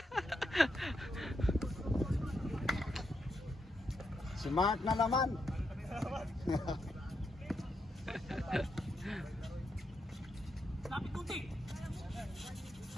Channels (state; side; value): normal; both; correlation 0.82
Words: Smart na naman.